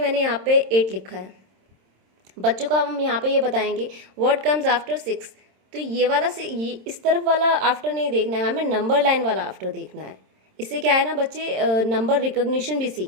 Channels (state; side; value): late; left; 27 ms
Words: यहाँ पे 8 लिखा है, बच्चों को हम यहाँ पे ये बताएंगे व्हाट कम्स आफ्टर 6, तो ये वाला से ये इस तरफ वाला आफ्टर नहीं देखना है, हमें नंबर लाइन वाला आफ्टर देखना है। इससे क्या है ना, बच्चे नंबर रिकॉग्निशन भी